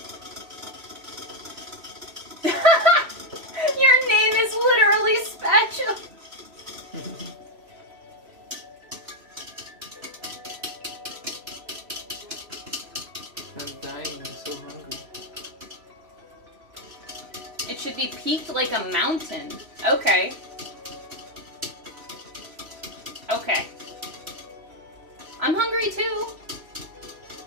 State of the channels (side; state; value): left; late; 3.0 ms